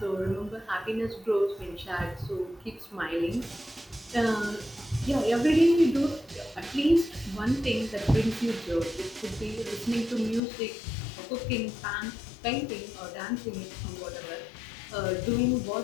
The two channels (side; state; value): right; drops out; at 10.4 s